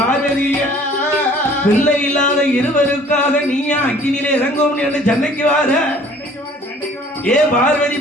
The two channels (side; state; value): both; normal; correlation 0.53